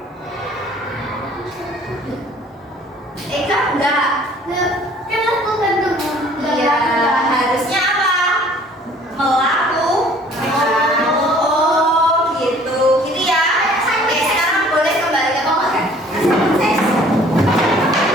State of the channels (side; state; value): both; normal; correlation 0.54